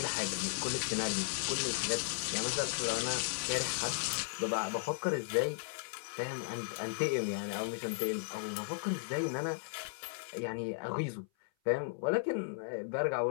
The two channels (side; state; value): right; silent; 54 dB below the other